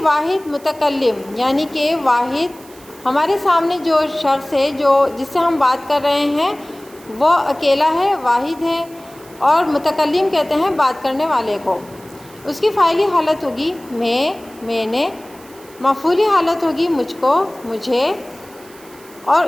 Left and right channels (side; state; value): right; noise; hiss, 24 dB below the sound